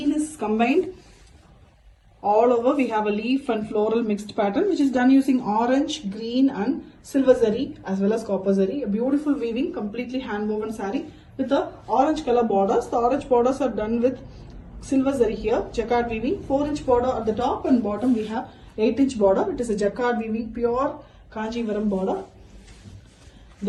is combined. All over we have a leaf and floral mixed pattern, which is done using orange, green and silver zari as well as copper zari. A beautiful weaving, completely hand woven saree with the orange color borders. The orange borders are done with silver zari here, jacquard weaving, 4-inch border at the top, and bottom we have 8-inch border. It is a jacquard weaving, pure Kanjivaram border.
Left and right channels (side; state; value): both; identical; correlation 1.00